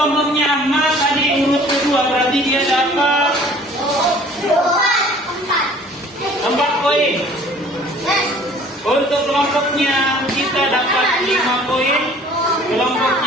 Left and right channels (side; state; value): both; normal; correlation 0.51